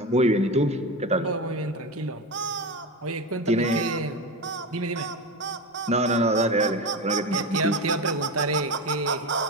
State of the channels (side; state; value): both; normal; correlation 0.21